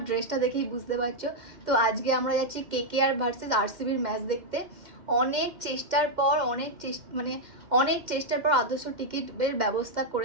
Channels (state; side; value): late; left; 2.1 ms